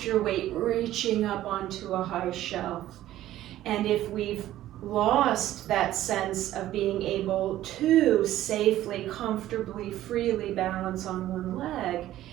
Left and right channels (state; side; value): quieter; left; 13.8 dB